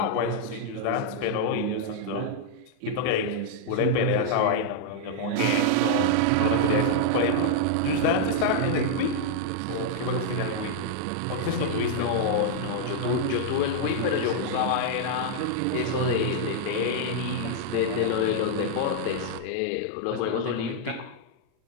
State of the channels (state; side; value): different; both; correlation -0.01